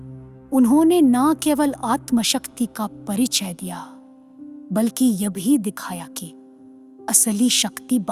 उन्होंने न केवल आत्मशक्ति का परिचय दिया, बल्कि यह भी दिखाया कि असली शक्ति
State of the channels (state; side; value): identical; both; correlation 1.00